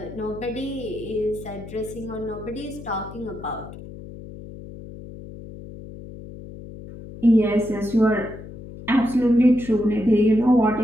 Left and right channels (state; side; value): noise; left; hum, 14 dB below the sound